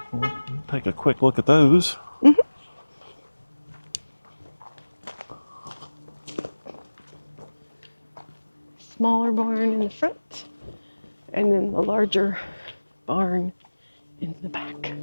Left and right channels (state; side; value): inverted; both; correlation -1.00